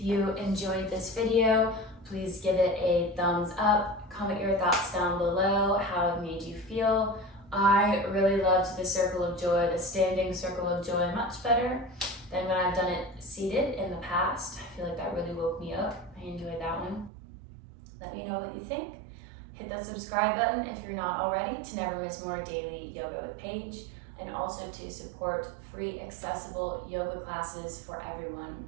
you enjoyed this video, please give it a thumbs up. Comment your thoughts down below, how it made you feel. I really loved the circle of joy, the standing circle of joy, much better than when I've done it seated in the past. I feel like that really woke me up. I enjoyed that one. Let me know what you think. Hit that subscribe button if you're not already to never miss more daily yoga with Paige, and also to support free accessible yoga classes for everyone,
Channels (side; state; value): left; drops out; at 17.1 s